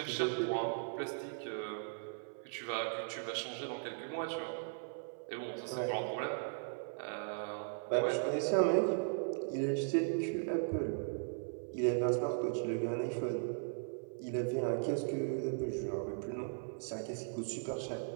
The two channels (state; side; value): silent; left; 53 dB below the other